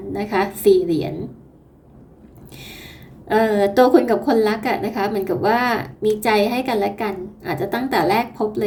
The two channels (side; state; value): both; identical; correlation 1.00